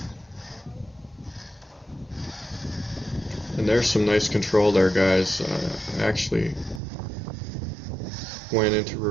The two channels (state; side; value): drops out; left; at 6.8 s